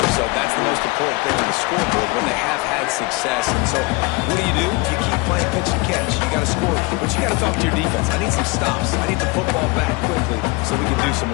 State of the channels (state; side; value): quieter; right; 25.6 dB